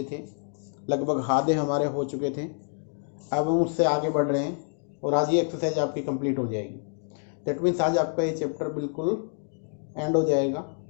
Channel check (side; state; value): right; silent; 60 dB below the other